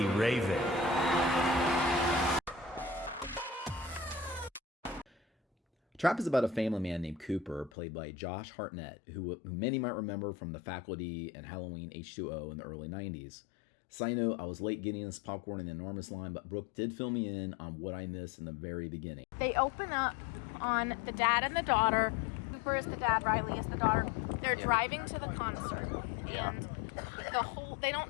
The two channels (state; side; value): drops out; right; at 7.7 s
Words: Raven. Trap is about a family man named Cooper, played by Josh Hartnett, who many might remember from The Faculty and Halloween H2O in the early 90s. Side note, I was late getting this popcorn in the enormous line, but Brooke did fill me in on what I missed in the very beginning. They open up on the dad and the daughter. Cooper is the dad, Riley is the daughter. They're driving to the concert, and they